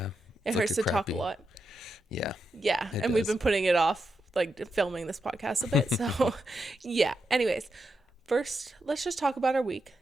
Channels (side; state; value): both; normal; correlation 0.85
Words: it hurts to talk a lot. Yeah. Yeah, and we've been putting it off, like filming this podcast a bit, so yeah. Anyways, first, let's just talk about our week.